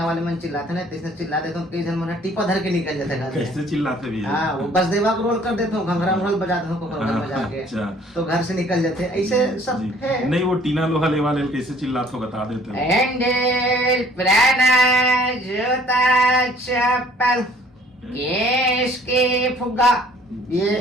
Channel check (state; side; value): normal; both; correlation 0.56